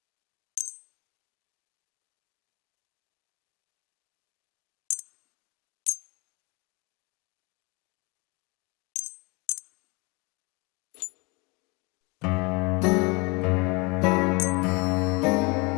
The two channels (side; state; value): right; quieter; 28.5 dB